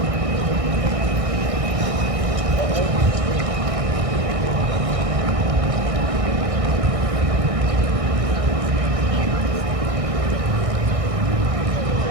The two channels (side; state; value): left; late; 1.6 ms